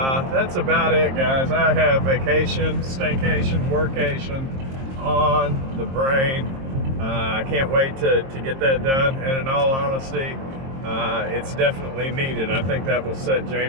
That's about it, guys. I have vacation, staycation, workation on the brain. I can't wait to get that done, and in all honesty, it's definitely needed. I think that will set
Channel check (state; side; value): late; left; 22 ms